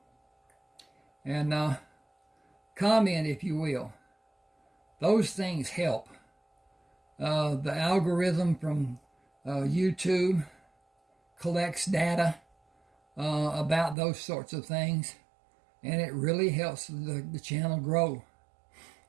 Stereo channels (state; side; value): drops out; left; at 14.0 s